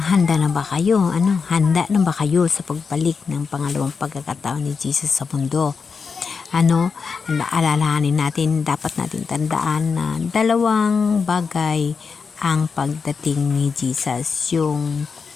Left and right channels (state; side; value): quieter; right; 5.4 dB